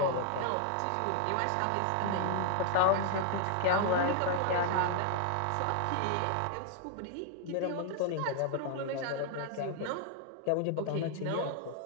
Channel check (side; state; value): both; different; correlation 0.00